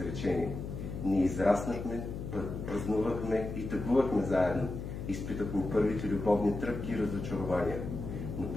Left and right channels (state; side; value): noise; left; hum, 7 dB below the sound